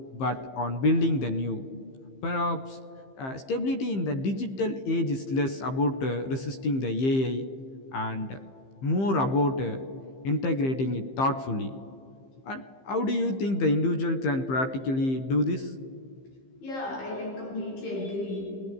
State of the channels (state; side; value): late; right; 15 ms